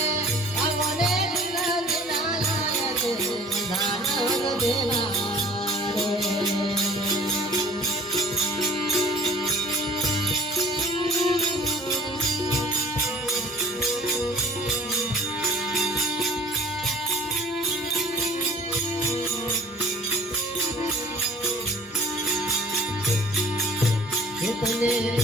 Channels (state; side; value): normal; both; correlation 0.49